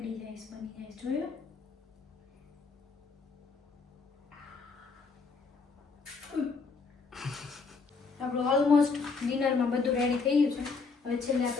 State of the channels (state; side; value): quieter; right; 4.6 dB